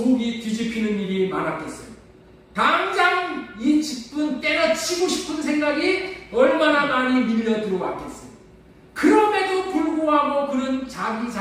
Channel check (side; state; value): both; identical; correlation 1.00